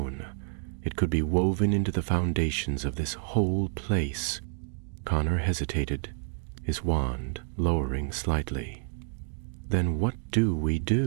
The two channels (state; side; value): silent; left; 59 dB below the other